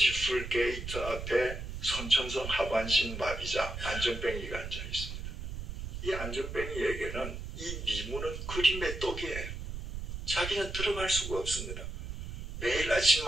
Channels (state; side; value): noise; right; rumble, 7 dB below the sound